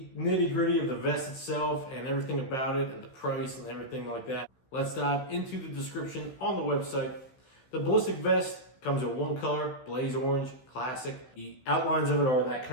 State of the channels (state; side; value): late; right; 15 ms